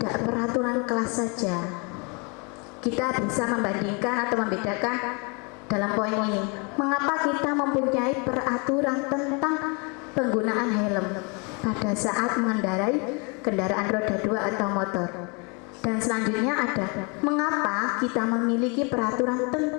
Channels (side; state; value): right; quieter; 32.3 dB